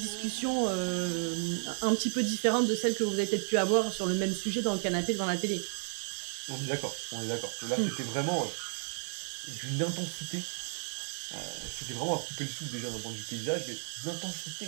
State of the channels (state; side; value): silent; left; digital silence